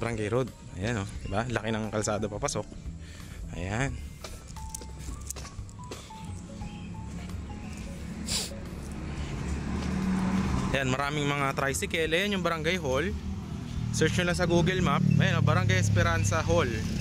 road. Ayan, diba? Laki ng kalsada papasok. Ayan. Ayan, maraming mga tricycle. Ayan yung barangay hall. Search nyo lang sa Google Map. Ayan, Barangay Esperanza Hall.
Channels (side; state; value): both; identical; correlation 1.00